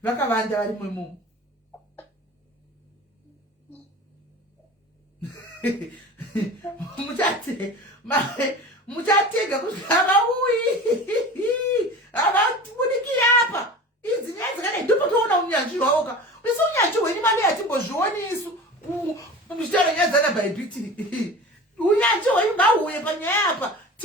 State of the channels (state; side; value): normal; both; correlation 0.36